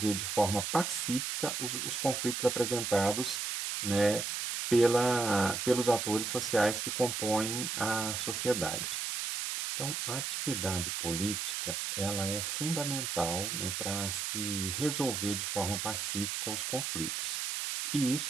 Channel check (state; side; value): noise; right; hiss, 2 dB below the sound